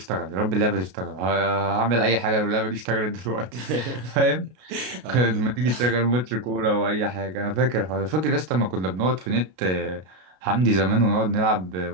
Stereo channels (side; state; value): left; late; 33 ms